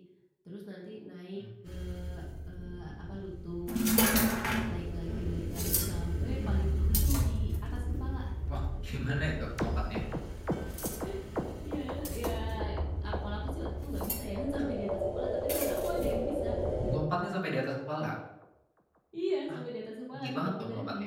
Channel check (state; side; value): identical; both; correlation 1.00